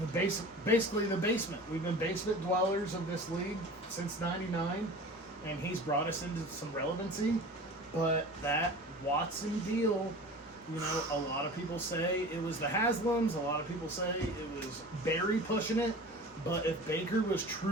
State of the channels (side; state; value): both; normal; correlation 0.38